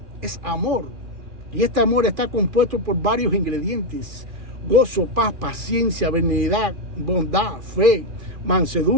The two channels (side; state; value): left; late; 2.4 ms